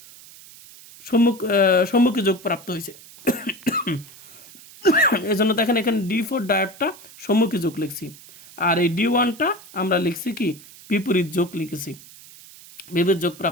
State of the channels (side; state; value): right; noise; hiss, 20 dB below the sound